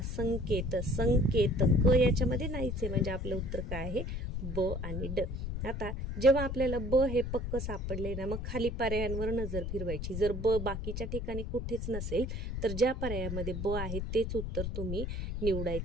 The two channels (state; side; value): noise; left; rumble, 4 dB below the sound